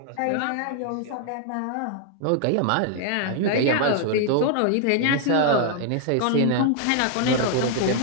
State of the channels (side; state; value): both; different; correlation 0.00